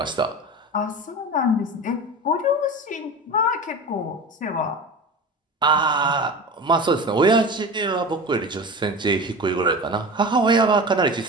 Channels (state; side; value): normal; both; correlation 0.31